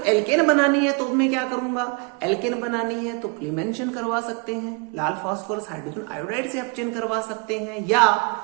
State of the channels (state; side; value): quieter; left; 32.9 dB